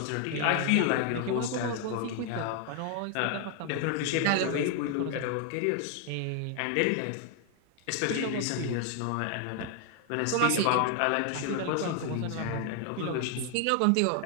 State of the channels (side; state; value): both; different; correlation 0.00